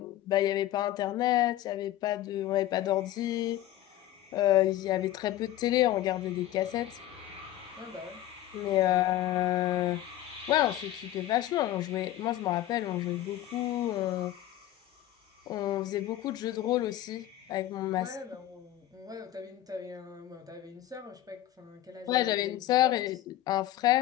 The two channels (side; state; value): right; quieter; 13.6 dB